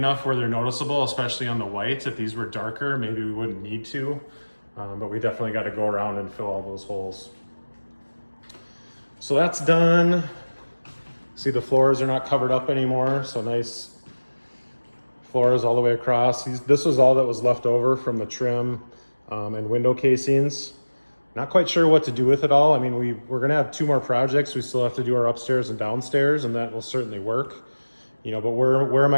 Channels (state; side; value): inverted; both; correlation -1.00